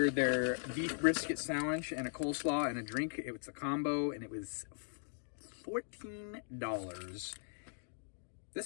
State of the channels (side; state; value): right; silent; digital silence